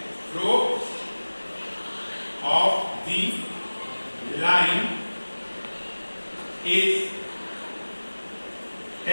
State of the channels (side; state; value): both; inverted; correlation -1.00